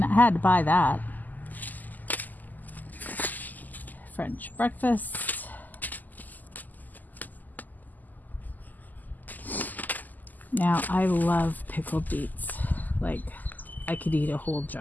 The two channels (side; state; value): right; late; 0.083 ms